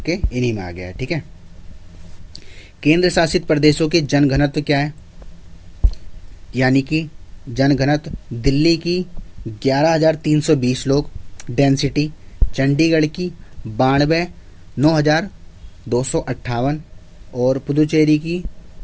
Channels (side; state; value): both; identical; correlation 1.00